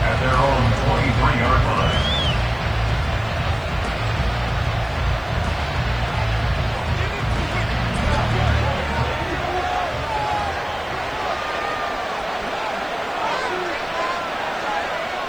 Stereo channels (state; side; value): noise; right; hiss, 30 dB below the sound